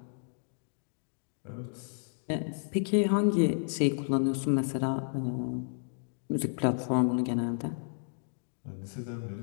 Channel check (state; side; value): silent; right; digital silence